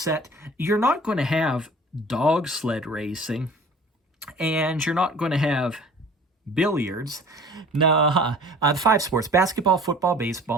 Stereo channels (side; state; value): both; normal; correlation 0.46